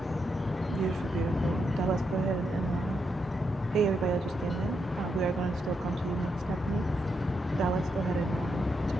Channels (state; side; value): normal; both; correlation 0.82